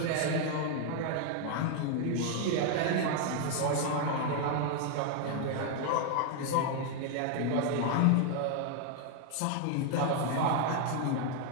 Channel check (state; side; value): different; both; correlation 0.00